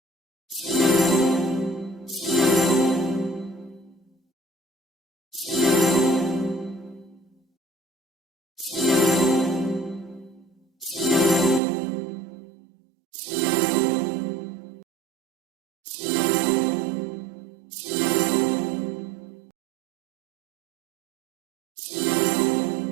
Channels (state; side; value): drops out; left; at 11.6 s